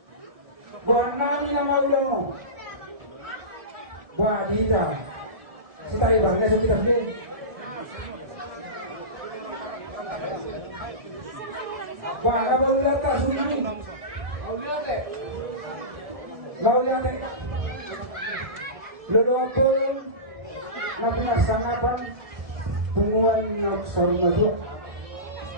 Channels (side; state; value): left; late; 1.7 ms